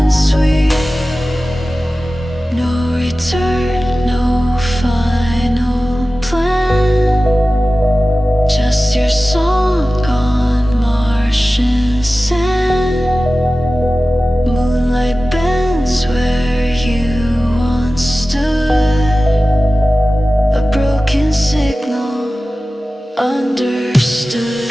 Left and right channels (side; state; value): both; normal; correlation 0.96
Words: sweet. No return, no final plan. Just your song on Martian sand. Moonlight bends where you once stood. A broken signal understood.